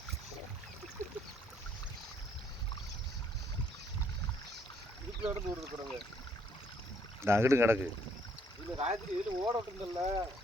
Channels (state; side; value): normal; both; correlation 0.68